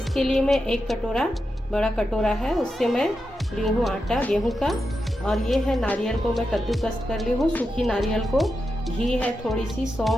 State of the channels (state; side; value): normal; both; correlation 0.88